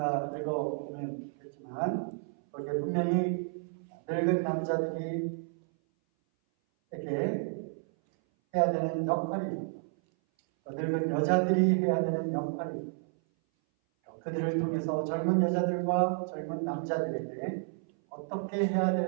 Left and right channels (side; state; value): left; silent; 57 dB below the other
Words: 읽어보면 되겠지만 거기에 분명히 늙은 남자들이 에게 해야 되는 역할이 늙은 여자들이 해야 되는 역할이 그들을 통해서 젊은 여자들과 젊은 남자들에게 어떻게 해야